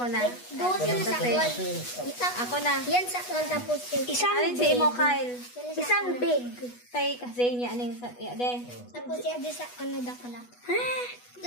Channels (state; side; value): late; right; 8.2 ms